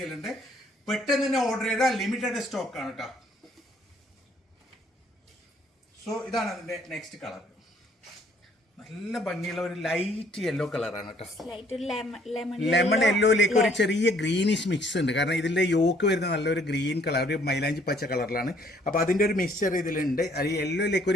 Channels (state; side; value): normal; both; correlation 0.63